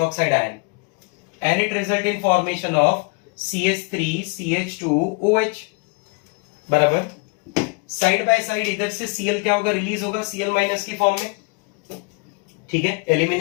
ion, and it result in formation of CH3 CH2OH, बराबर। साइड बाय साइड इधर से Cl क्या होगा, रिलीज होगा Cl माइनस की फॉर्म में, ठीक है।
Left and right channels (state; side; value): quieter; right; 31.6 dB